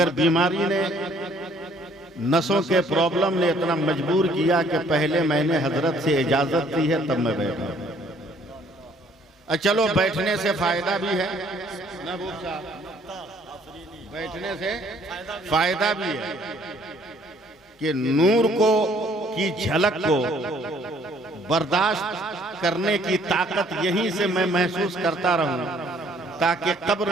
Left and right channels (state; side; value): normal; both; correlation 0.61